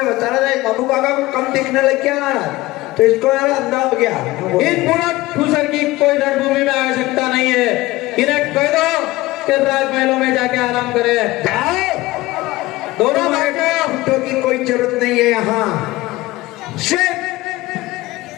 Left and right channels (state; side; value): quieter; right; 18.9 dB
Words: बता रहा था बाबू काका को कम दिखने लग गया महाराज, तो इसको यार अंधा हो गया। इन बुढ़ा ठूसर की कोई रणभूमि में आवश्यकता नहीं है। इन्हें कह दो कि राजमहलों में जाके आराम करे। जाओ, दोनों घंटों की कोई जरूरत नहीं है यहाँ। सिर्फ